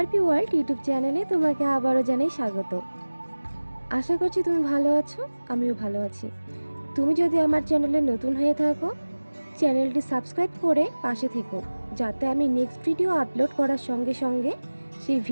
world YouTube চ্যানেলে তোমাকে আবারও জানাই স্বাগত। আশা করছি তুমি ভালো আছো, আমিও ভালো আছি। তুমি যদি আমার চ্যানেলে নতুন হয়ে থাকো, চ্যানেলটি সাবস্ক্রাইব করে পাশে থেকো, যাতে আমি নেক্সট ভিডিও আপলোড করার সঙ্গে সঙ্গে সেই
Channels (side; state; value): both; inverted; correlation -1.00